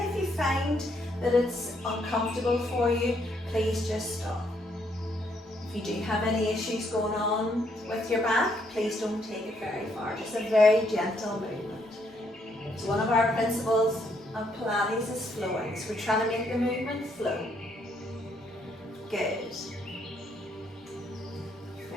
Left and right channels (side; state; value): both; normal; correlation 0.72